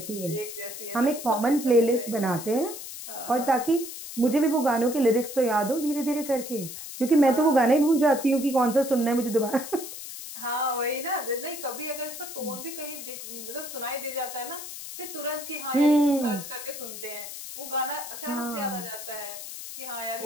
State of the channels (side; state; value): left; noise; hiss, 10 dB below the sound